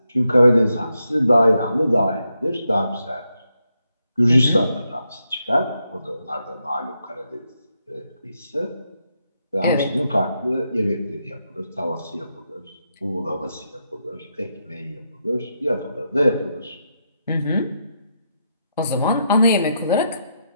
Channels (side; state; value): both; inverted; correlation -0.82